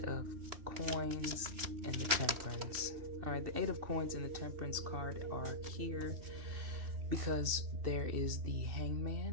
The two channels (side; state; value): left; late; 2.9 ms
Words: of Coins and the Temperance? All right. The 8 of Coins and the Temperance card are here because there is the